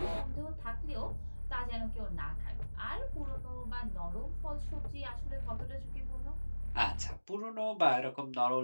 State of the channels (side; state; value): both; inverted; correlation -1.00